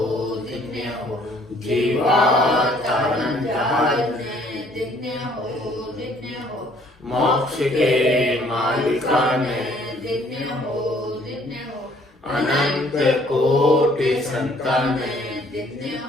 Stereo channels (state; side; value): normal; both; correlation 0.60